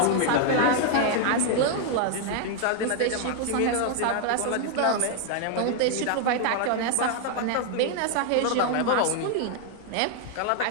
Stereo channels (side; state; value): both; different; correlation 0.00